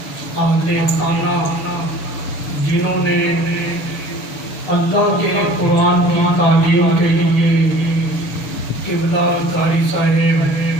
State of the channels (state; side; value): late; right; 6.9 ms